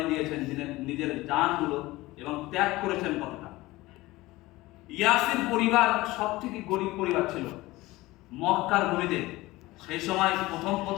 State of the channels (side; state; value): right; quieter; 19.3 dB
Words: দিয়েছেন, নিজের জানগুলো, এবং ত্যাগ করেছেন কতটা। ইয়াসির পরিবার সবথেকে গরিব পরিবার ছিল মক্কার ভূমিতে। সেই সময়